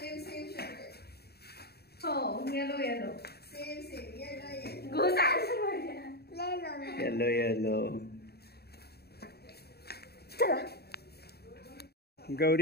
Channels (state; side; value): late; right; 0.47 ms